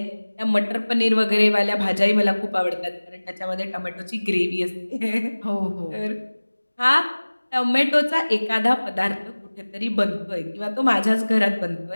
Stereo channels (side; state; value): both; inverted; correlation -1.00